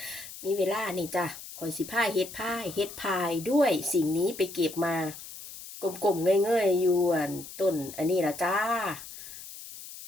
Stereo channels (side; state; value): left; noise; hiss, 13 dB below the sound